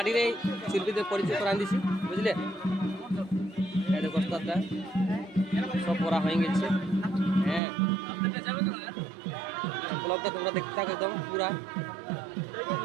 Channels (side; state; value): left; drops out; at 7.6 s